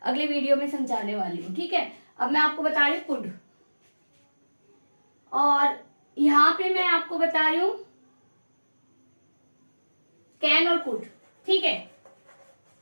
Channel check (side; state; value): both; inverted; correlation -1.00